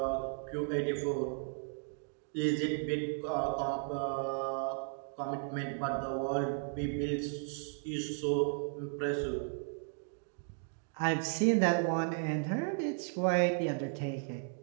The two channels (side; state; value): left; silent; 54 dB below the other